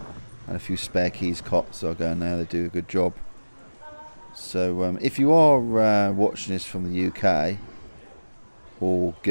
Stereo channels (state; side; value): inverted; both; correlation -1.00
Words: and a few spare keys cops, so I go in there. They do a good job. So if you are watching this from the UK or